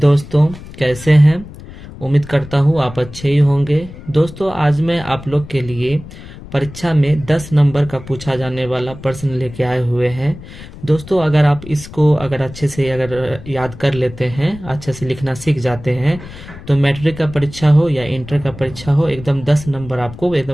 कैसे हैं। उम्मीद करता हूँ आप अच्छे ही होंगे। दोस्तों आज मैं आप लोग के लिए परीक्षा में 10 नंबर का पूछा जाने वाला प्रश्न लेके आए हुए हैं। दोस्तों अगर आप इसको अच्छे से याद कर लेते हैं, अच्छे से लिखना सीख जाते हैं, तो मैट्रिक का परीक्षा हो या इंटर का परीक्षा हो, एकदम 10 नंबर आपको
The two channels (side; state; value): left; noise; rumble, 15 dB below the sound